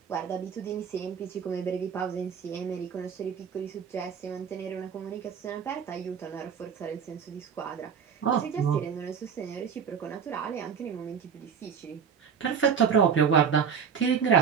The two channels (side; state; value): left; quieter; 7.0 dB